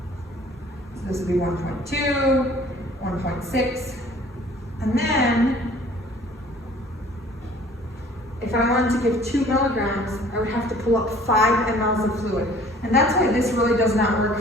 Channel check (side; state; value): both; normal; correlation 0.52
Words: this would be 1.2, 1.6, and then if I wanted to give 2 milligrams, I would have to pull up 5 mLs of fluid. And that's why this really does not